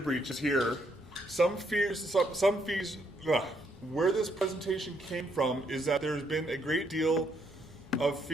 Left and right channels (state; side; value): normal; both; correlation 0.73